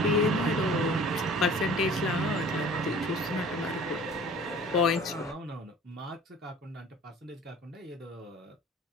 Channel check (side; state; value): both; normal; correlation 0.46